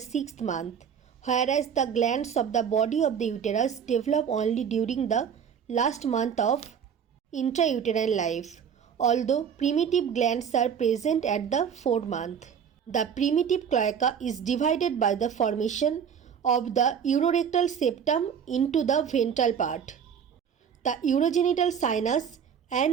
month, whereas the glands of the body of the uterus develop only during the last month of intrauterine life, although primitive glands are present at the 4th month. The primitive cloaca is divided by the formation of the urorectal septum into the ventral part, the urogenital sinus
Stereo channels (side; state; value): left; quieter; 7.7 dB